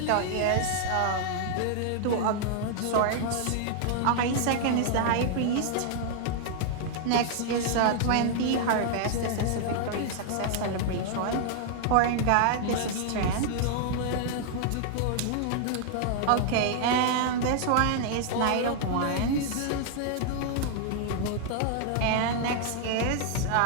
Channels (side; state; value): both; different; correlation -0.01